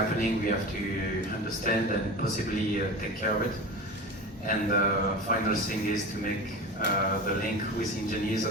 we have to understand and possibly take care of it. And the final thing is to make the link with engineers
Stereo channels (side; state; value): both; normal; correlation 0.30